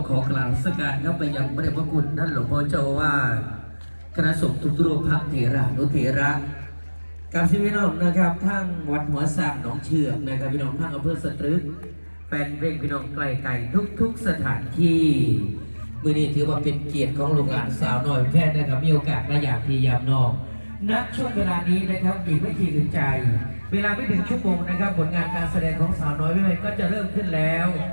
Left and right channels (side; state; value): both; inverted; correlation -1.00